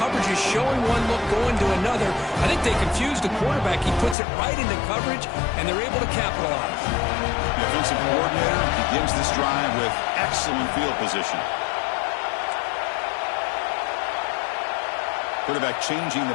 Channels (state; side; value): drops out; right; at 4.2 s